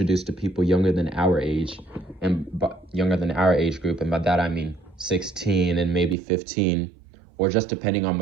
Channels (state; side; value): drops out; left; at 6.2 s